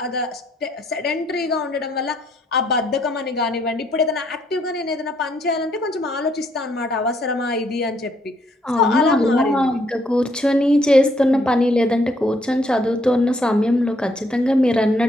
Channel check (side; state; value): both; normal; correlation 0.70